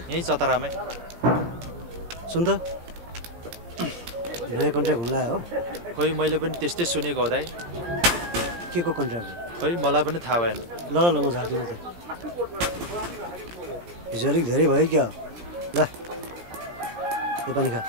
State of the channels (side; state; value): left; late; 17 ms